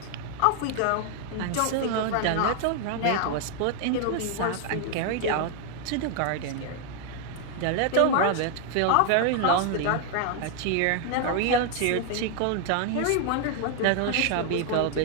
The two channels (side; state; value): both; different; correlation 0.00